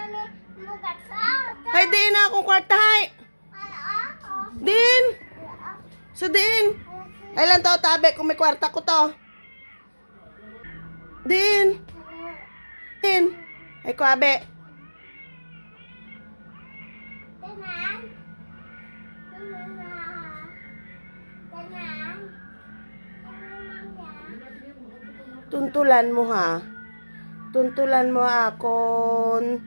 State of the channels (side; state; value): both; inverted; correlation -1.00